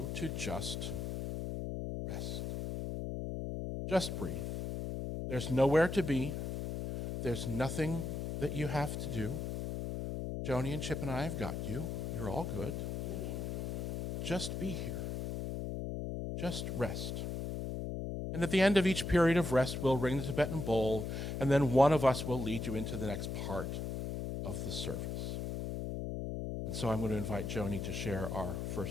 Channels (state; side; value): noise; left; hum, 3 dB below the sound